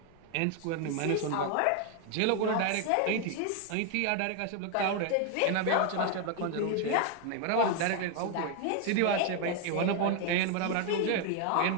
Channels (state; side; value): different; both; correlation 0.01